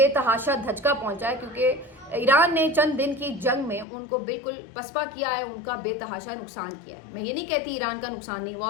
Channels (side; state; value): right; drops out; at 3.9 s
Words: धचका पहुंचा है, क्योंकि ईरान ने चंद दिन की जंग में उनको बिल्कुल पसपा किया है, उनका बेतहाशा नुकसान किया है। मैं ये नहीं कहती ईरान का नुकसान नहीं हुआ,